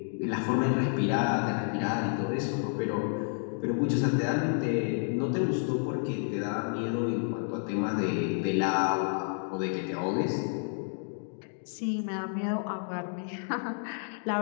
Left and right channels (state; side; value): silent; right; 58 dB below the other